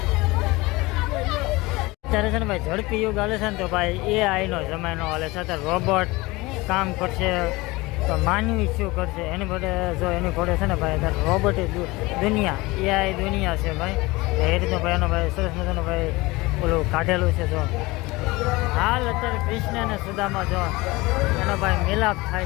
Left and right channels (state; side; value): quieter; right; 22.0 dB